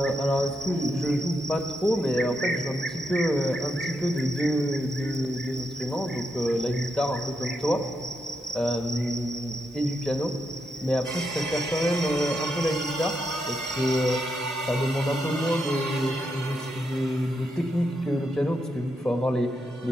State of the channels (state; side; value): normal; both; correlation 0.82